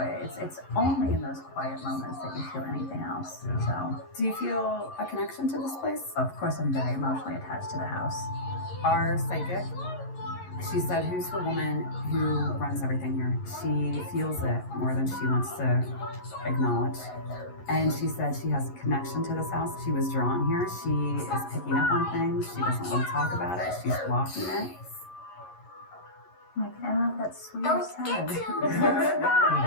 It's only in those quiet moments that you feel anything else. So, Do you feel a connection to this place? of course, I'm very emotionally attached to the house. Our psychic, she said, who's the woman who runs everything here? She feels it more than she wants to acknowledge. And she said she has a connection to this house. She was drawn here. She is picking up on things. She doesn't want to talk about it. She's blocking it. Like, I don't know if that's sweet or sad. Like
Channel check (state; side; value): late; right; 11 ms